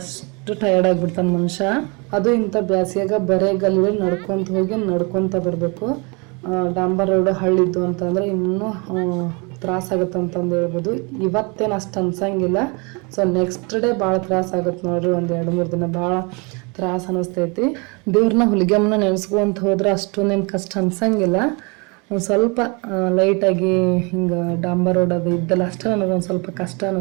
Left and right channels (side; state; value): left; quieter; 30.8 dB